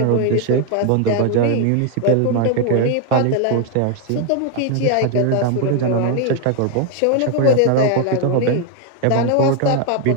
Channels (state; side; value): different; both; correlation 0.01